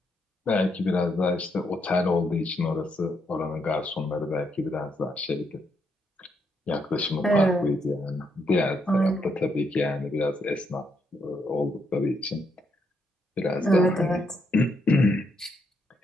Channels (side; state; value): both; normal; correlation 0.77